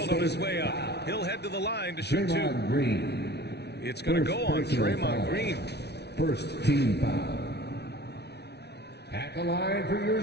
on his way up. He'll head to the line to shoot 2. Green. It's going to go on Draymond Green. First team foul. At the line for your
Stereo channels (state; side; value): late; right; 0.49 ms